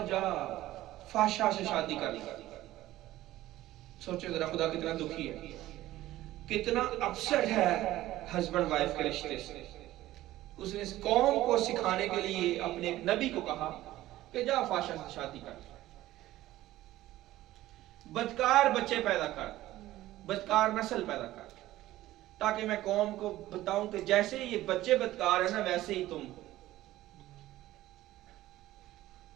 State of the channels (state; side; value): quieter; left; 15.5 dB